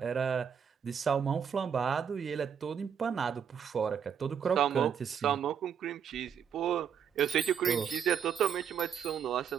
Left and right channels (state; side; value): quieter; left; 7.8 dB